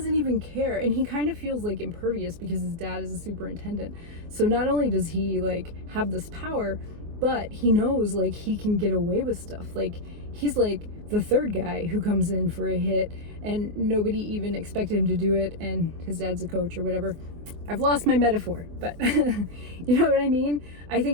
even care. And he kind of feels, like, impervious because his dad is a superintendent. So not only does he, like, have this power, but he knows, like, he can get away with stuff. Like, he's, like, the third guy who comes in for a hit and nobody even expected him to do it, and his dad's a coach or whatever. I've lost my metaphor, but you know what I mean? I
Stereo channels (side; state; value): left; late; 24 ms